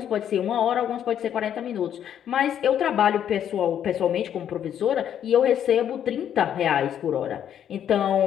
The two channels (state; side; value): quieter; right; 9.7 dB